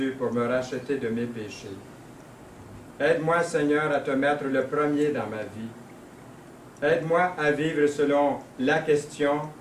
pour me racheter de mes péchés. Aide-moi, Seigneur, à te mettre le premier dans ma vie. Aide-moi à vivre selon la question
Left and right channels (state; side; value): identical; both; correlation 1.00